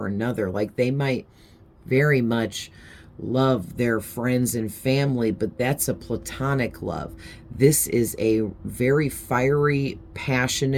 another. Like they might very much love their friends and family, but that's a platonic love. This is a very fiery,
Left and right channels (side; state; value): both; identical; correlation 1.00